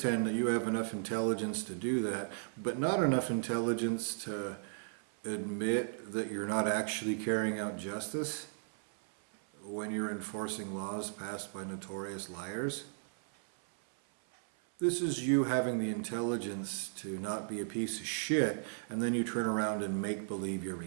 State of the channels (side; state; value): left; silent; 54 dB below the other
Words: that you have enough intelligence to do that, but not enough intelligence to admit that you're not actually carrying out justice when you're enforcing laws passed by notorious liars. This is you having the intelligence to not be a piece of shit, and then you turn around and make believe you're